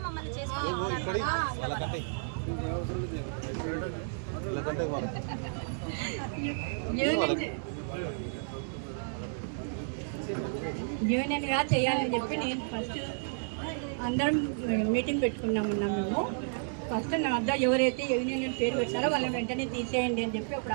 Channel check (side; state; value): left; silent; digital silence